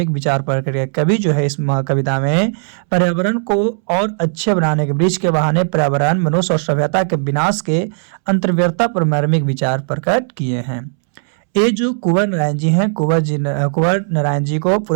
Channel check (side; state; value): left; silent; 69 dB below the other